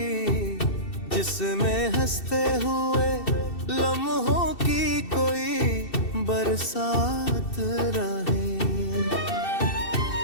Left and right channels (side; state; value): right; late; 2.7 ms